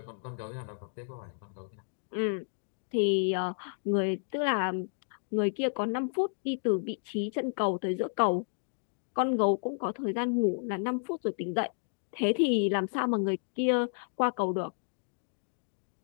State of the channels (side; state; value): right; silent; digital silence